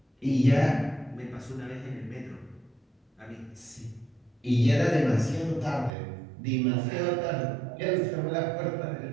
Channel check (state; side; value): drops out; left; at 5.9 s